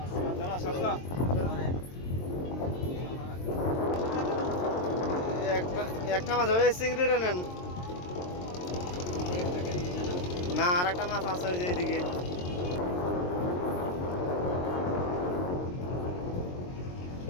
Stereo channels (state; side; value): late; right; 22 ms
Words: একটা মাছ ওই চিংড়িটা নেন না, আর একটা মাছ আছে ওই যে এইদিকে।